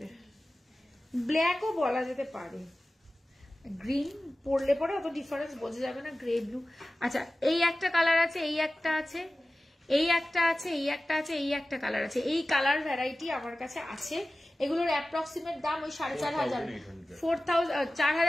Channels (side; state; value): both; normal; correlation 0.96